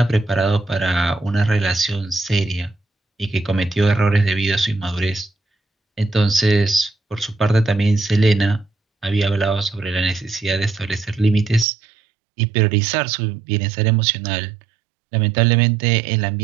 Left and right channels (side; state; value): left; drops out; at 11.7 s